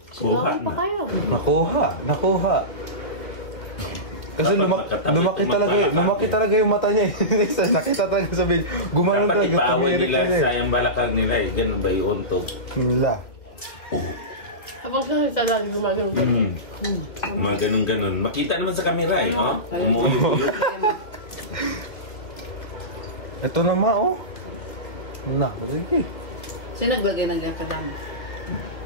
Kuha Sinabi pa na. kayo. Nakuha. Kasi Dapat magkatabi lumaki kung talaga, magbalakad lumaki eh. talaga yung mata niya. Isa, nakita talaga sa video. Gumanon Dapat talaga. ipaaway tumirik nila talaga sa yung balakag nila eh. Ganun ba yung untog? Nila. Habang siya nagtadali, gumagano. Mga ganun-ganun. Makita naman sa camera eh. Oh? Umuyog-uyog. Ito naman oh. Naku, sige. Sino naglagay ng ganyan kadami?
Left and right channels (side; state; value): right; late; 2.7 ms